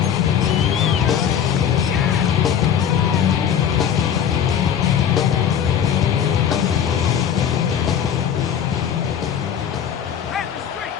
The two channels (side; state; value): right; quieter; 8.6 dB